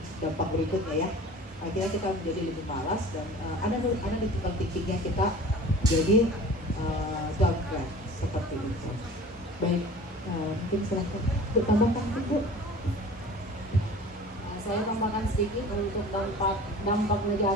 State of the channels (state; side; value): normal; both; correlation 0.43